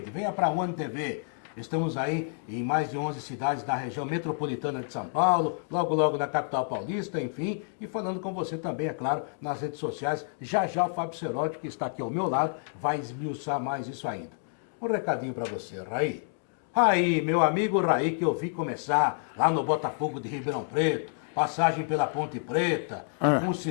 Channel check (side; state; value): right; silent; digital silence